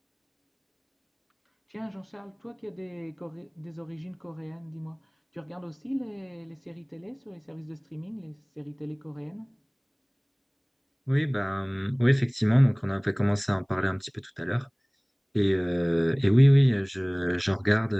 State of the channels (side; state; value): both; identical; correlation 1.00